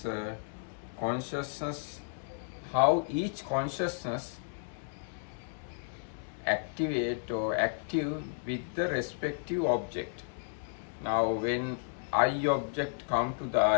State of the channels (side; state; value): right; silent; digital silence